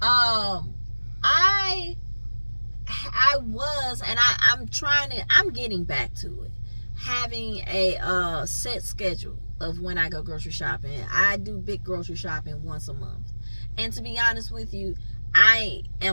I was, and I'm getting back to it, having a set schedule of when I go grocery shopping. I do big grocery shopping once a month, and to be honest with you, I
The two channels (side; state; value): both; inverted; correlation -1.00